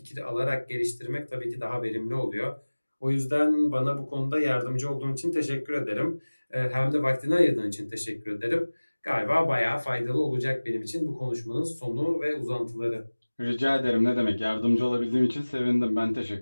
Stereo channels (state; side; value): inverted; both; correlation -1.00